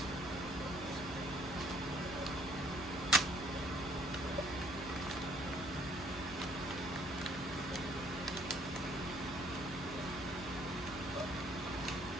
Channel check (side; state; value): both; normal; correlation 0.62